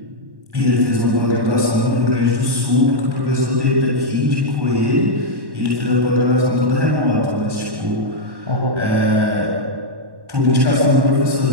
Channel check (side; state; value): left; late; 1.1 ms